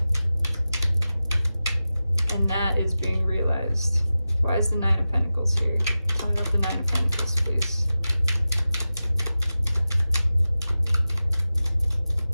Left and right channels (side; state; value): both; inverted; correlation -0.94